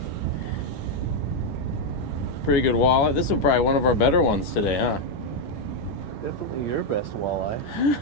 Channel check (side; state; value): right; late; 10 ms